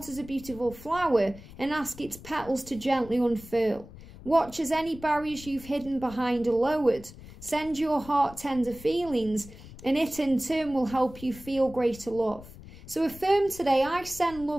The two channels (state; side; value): noise; left; rumble, 17 dB below the sound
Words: as a beautiful flower and ask its petals to gently unfurl. Watch as any barriers you've hidden behind are lowered. Send your heart tender feelings, and it in turn will help you feel greater love. So affirm today, I send